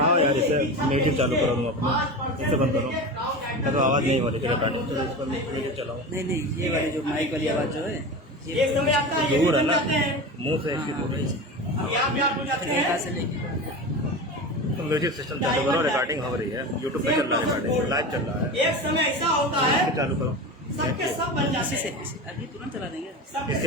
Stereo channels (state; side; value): normal; both; correlation 0.27